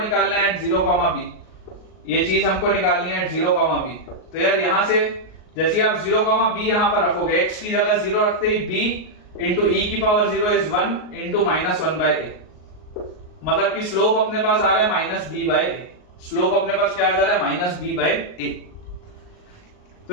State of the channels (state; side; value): late; right; 38 ms